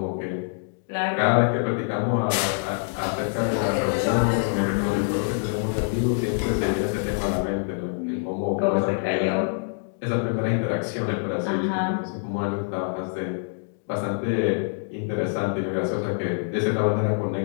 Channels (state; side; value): silent; right; digital silence